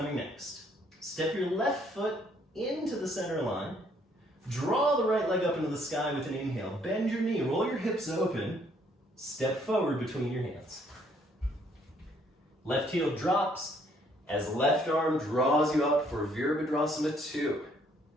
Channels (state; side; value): normal; both; correlation 0.66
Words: next. Step your left foot into the center line. Draw the right leg up into the sky with an inhale. Bend your knee, roll your hips open. Step forward between your hands. Left heel drops as left arm draws you up for Virabhadrasana 2.